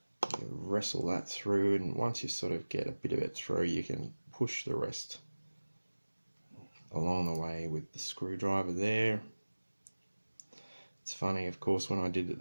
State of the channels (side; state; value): both; inverted; correlation -1.00